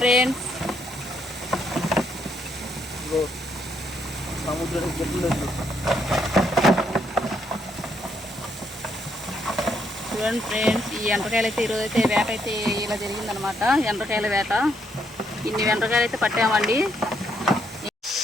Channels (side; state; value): both; normal; correlation 0.74